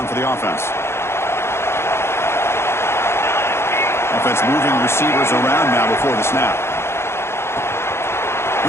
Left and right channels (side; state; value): right; late; 0.12 ms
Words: for the offense. Offense moving receivers around now before the snap.